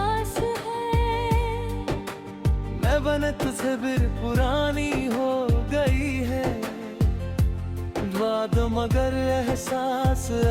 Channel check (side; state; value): both; identical; correlation 1.00